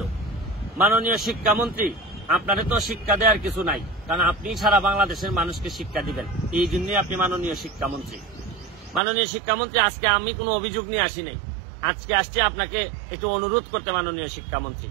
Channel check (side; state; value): left; drops out; at 9.0 s